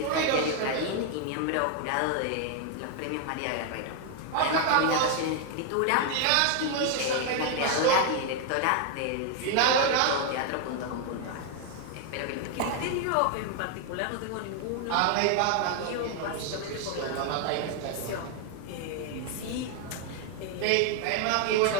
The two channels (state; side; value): different; both; correlation 0.01